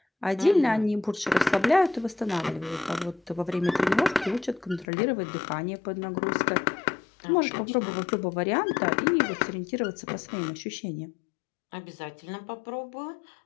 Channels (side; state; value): right; drops out; at 4.9 s